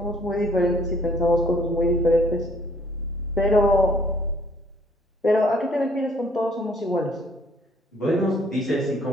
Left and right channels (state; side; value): normal; both; correlation 0.60